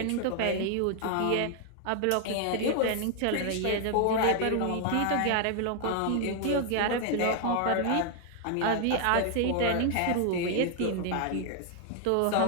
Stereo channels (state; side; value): different; both; correlation 0.00